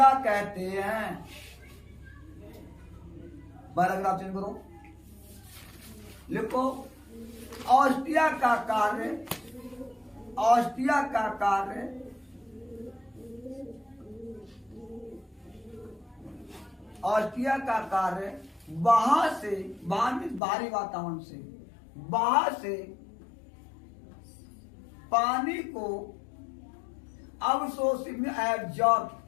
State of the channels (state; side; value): drops out; right; at 20.4 s